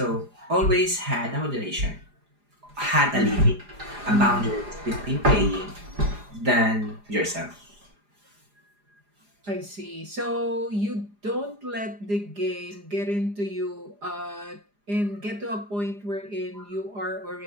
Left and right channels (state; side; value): late; left; 4.9 ms